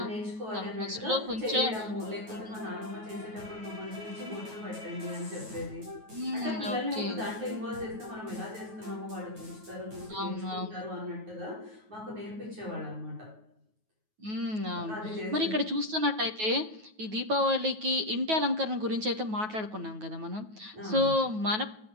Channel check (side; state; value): left; late; 9.3 ms